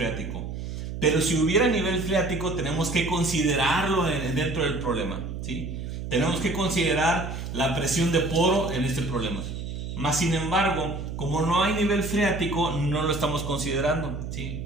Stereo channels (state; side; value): noise; right; hum, 6 dB below the sound